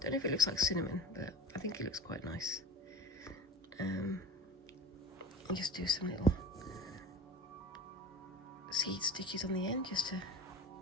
know if it looks like cinnamon, but I think it looks quite nice. And just do some little seed stitches on the end, just to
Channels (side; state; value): both; normal; correlation 0.33